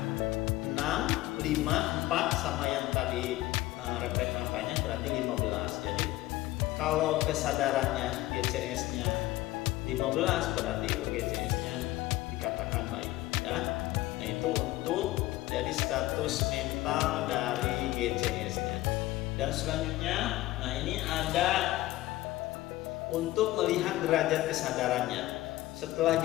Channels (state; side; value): quieter; right; 17.2 dB